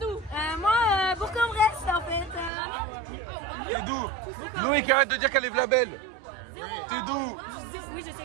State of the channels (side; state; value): left; drops out; at 2.5 s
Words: Moi, Bourg-en-Bresse en fait. T'es d'où? Loïc, arrête de dire qu'elle est vlabelle. T'es d'où? Oui, je sais